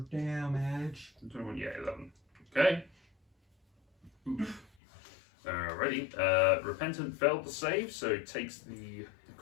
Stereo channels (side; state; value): right; drops out; at 4.7 s